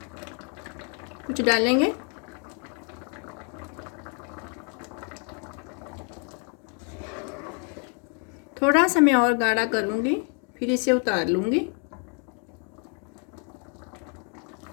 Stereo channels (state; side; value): quieter; right; 39.3 dB